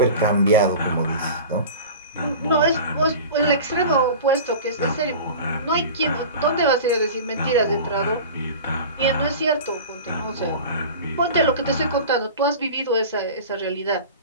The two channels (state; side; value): inverted; both; correlation -0.36